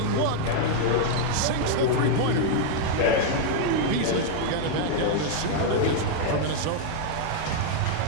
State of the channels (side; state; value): both; different; correlation -0.01